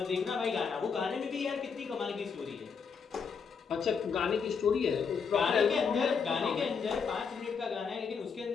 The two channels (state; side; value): quieter; right; 5.9 dB